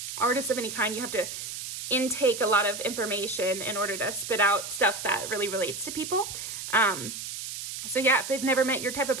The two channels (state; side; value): noise; right; hiss, 7 dB below the sound